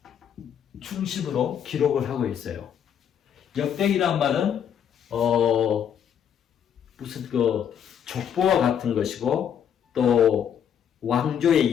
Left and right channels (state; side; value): quieter; right; 8.6 dB